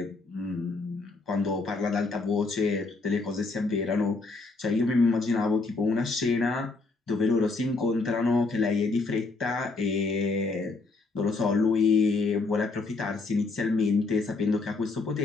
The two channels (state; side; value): quieter; right; 3.7 dB